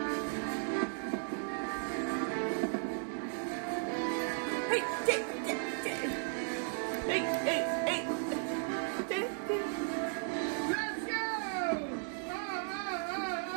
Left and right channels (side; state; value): left; silent; 54 dB below the other